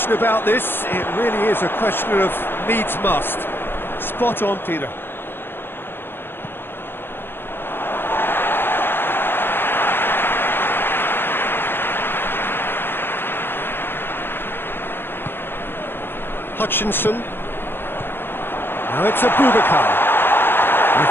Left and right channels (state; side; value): late; right; 0.10 ms